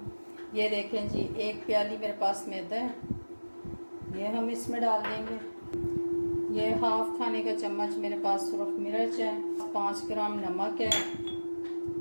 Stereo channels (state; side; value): inverted; both; correlation -1.00